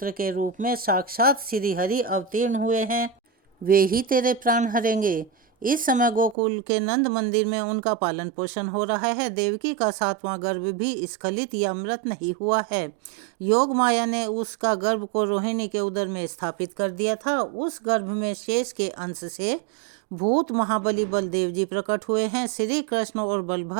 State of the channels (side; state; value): left; drops out; at 6.4 s